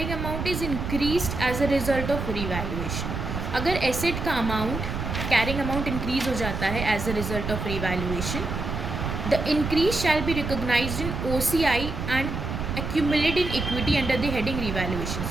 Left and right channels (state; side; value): noise; right; rumble, 4 dB below the sound